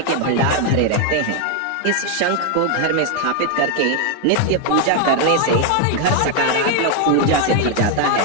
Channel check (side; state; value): both; different; correlation 0.01